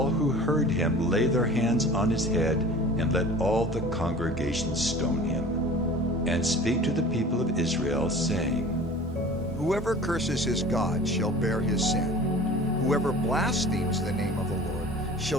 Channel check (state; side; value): normal; both; correlation 0.42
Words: who heard him lay their hands on his head, and let all the congregation stone him. And speak to the people of Israel, saying, Whoever curses his God shall bear his sin. Whoever blasphemes the name of the Lord